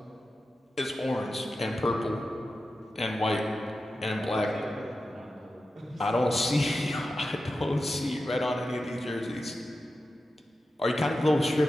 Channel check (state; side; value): normal; both; correlation 0.92